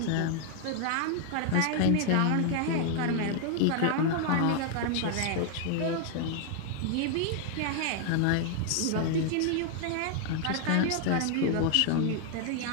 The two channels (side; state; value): both; different; correlation 0.00